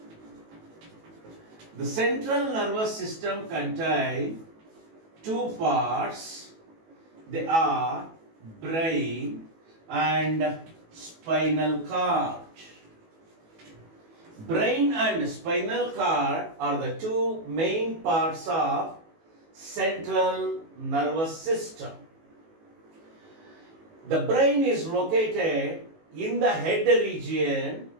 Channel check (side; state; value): left; late; 18 ms